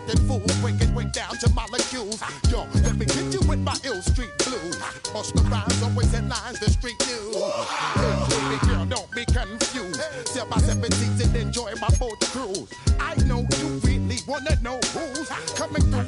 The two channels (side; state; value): both; identical; correlation 1.00